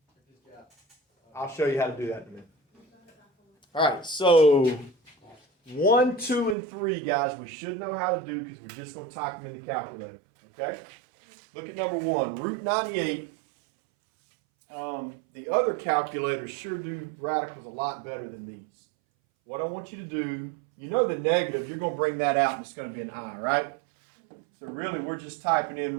I'll show you how to do that in a minute. All right, so 1, 2, and 3, guys, we should know how to do because we're just going to type them in the calculator. Okay? Look at number 1, root 98. The other calculators sure do radicals a lot better than these. What I want you to do, you know the negative, you're going to bring that out and it's going to be an I, right? So really, we're just typing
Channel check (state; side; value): drops out; left; at 6.6 s